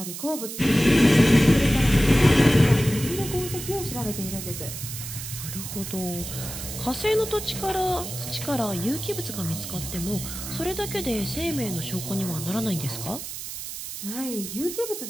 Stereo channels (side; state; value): right; noise; hiss, 8 dB below the sound